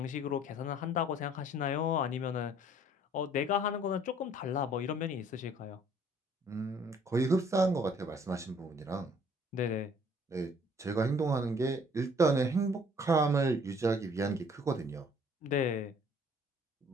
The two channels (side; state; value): both; normal; correlation 0.58